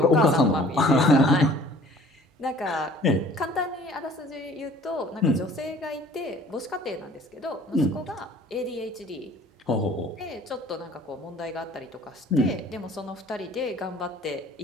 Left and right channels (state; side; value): normal; both; correlation 0.51